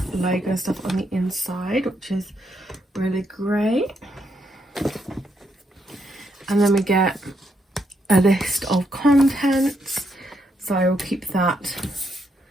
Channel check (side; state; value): both; normal; correlation 0.78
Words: logo and stuff on the inside, which is really great. And then we get a list of contents. So I will keep that,